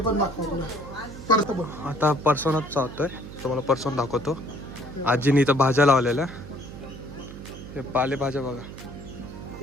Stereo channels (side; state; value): right; noise; hum, 13 dB below the sound